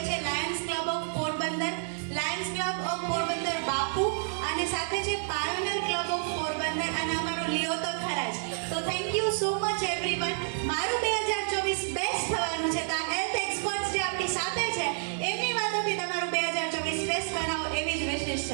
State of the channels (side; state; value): left; silent; digital silence